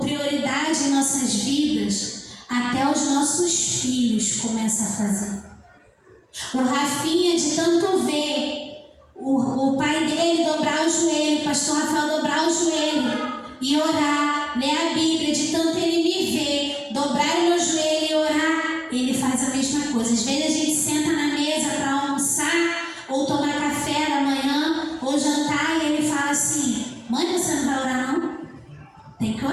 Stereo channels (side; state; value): both; identical; correlation 1.00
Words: fazer. O Rafinha, de tanto ver o pai dele dobrar o joelho, o pastor Rafael dobrar o joelho e orar, ler a Bíblia, de tanto ele me ver, dobrar o meu joelho e orar, ele faz a mesma coisa. Às vezes a gente senta na mesa para almoçar, ou tomar café da manhã, ou jantar, e ele fala assim: mãe, você não vai orar não? Tem que